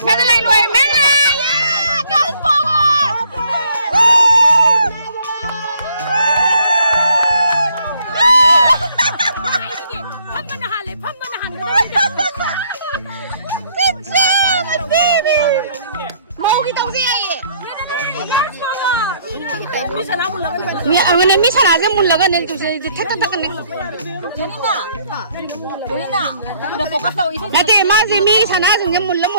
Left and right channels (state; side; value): inverted; both; correlation -0.64